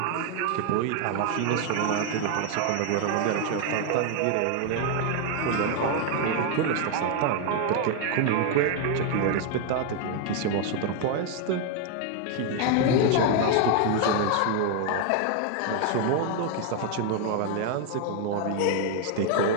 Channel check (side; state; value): both; different; correlation 0.01